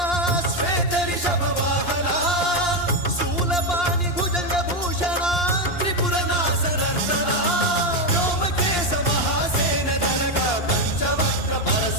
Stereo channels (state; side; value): late; right; 2.8 ms